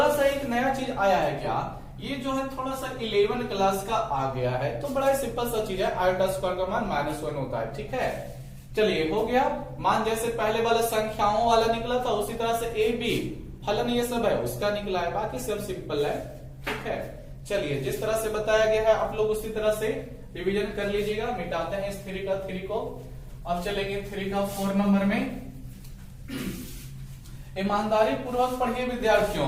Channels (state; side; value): identical; both; correlation 1.00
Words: सा एक नया चीज आया है। क्या, ये जो है थोड़ा सा 11 क्लास का आ गया है, तो बड़ा सिंपल सा चीज है, आयोटा स्क्वायर का मान -1 होता है, ठीक है। चलिए हो गया, मान जैसे पहले वाला संख्याओं वाला निकला था, उसी तरह से ए बी फलन ये सब है उसका निकला है, बाकी सब सिंपल है, ठीक है। चलिए, जिस तरह से बताया गया है आप लोग उसी तरह से रिवीजन कर लीजिएगा। मिटाते हैं इस 3 का 3 को। अब चलेंगे 3 का 4 नंबर में। ईमानदारी पूर्वक पढ़िए